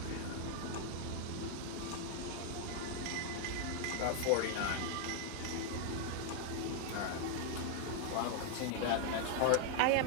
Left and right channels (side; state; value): both; different; correlation 0.00